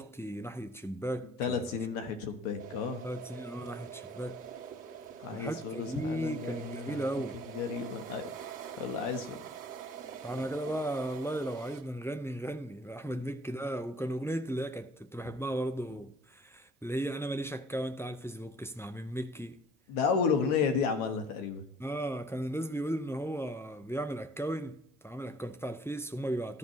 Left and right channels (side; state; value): both; normal; correlation 0.52